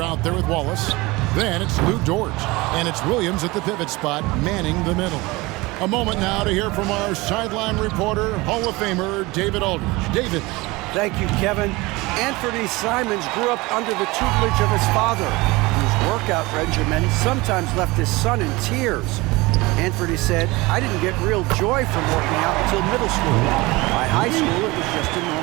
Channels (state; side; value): quieter; left; 22.4 dB